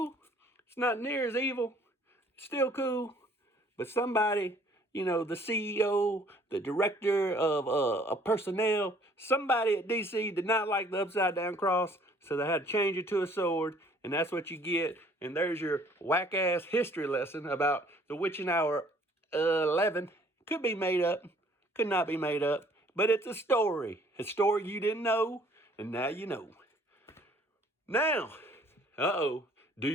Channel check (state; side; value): normal; both; correlation 0.58